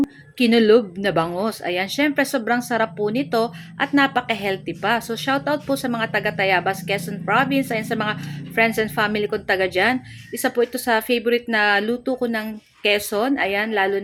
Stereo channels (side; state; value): both; identical; correlation 1.00